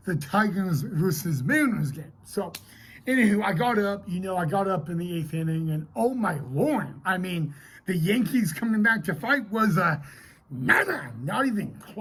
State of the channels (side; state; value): both; identical; correlation 1.00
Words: the Tigers versus Mariners game. So, anywho, I got up in the 8th inning, and oh my Lord, the Yankees coming back to fight was not even